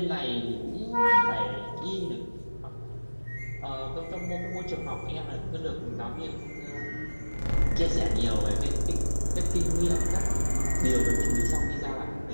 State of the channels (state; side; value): inverted; both; correlation -1.00